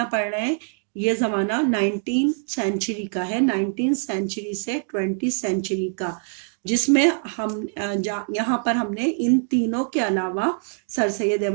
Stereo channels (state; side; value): silent; left; 59 dB below the other